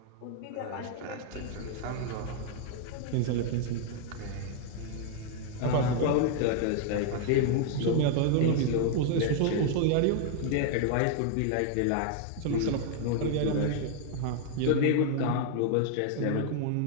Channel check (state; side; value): different; both; correlation 0.00